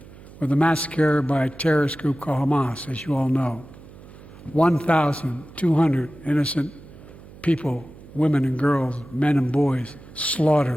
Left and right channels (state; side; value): noise; right; hum, 19 dB below the sound